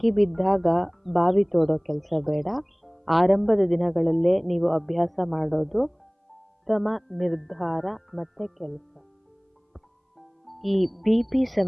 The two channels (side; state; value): both; identical; correlation 1.00